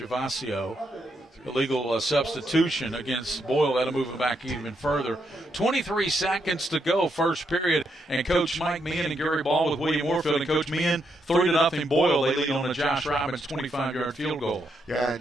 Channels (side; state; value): both; normal; correlation 0.79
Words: Illegal substitution against Boyle. That'll move it back even further. 23 seconds to go, first period. And Coach Mike Meehan and Gary Ball with William Warfield. And Coach Meehan, 3-0 Boyle. They lead on a Josh Robbins 25-yard field goal. Yeah,